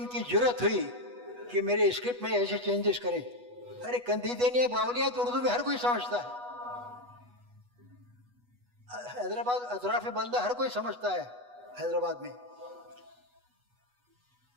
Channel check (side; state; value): left; late; 8.2 ms